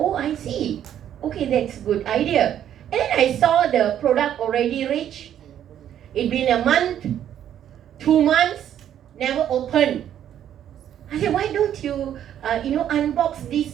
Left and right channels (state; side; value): quieter; left; 10.4 dB